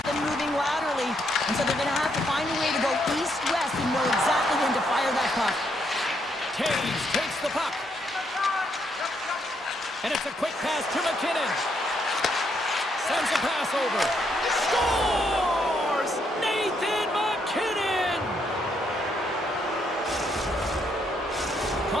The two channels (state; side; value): normal; both; correlation 0.75